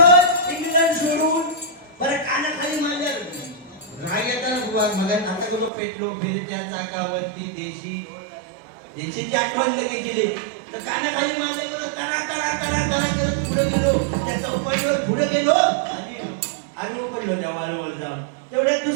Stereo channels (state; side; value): drops out; left; at 5.7 s